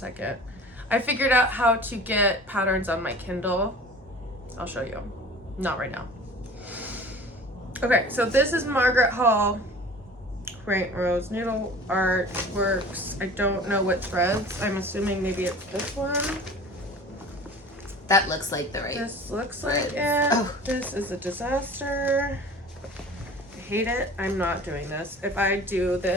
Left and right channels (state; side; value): normal; both; correlation 0.42